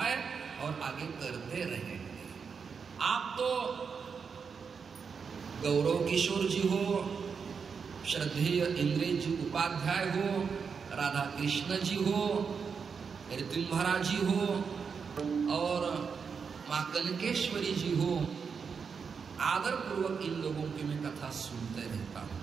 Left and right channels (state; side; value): quieter; left; 5.9 dB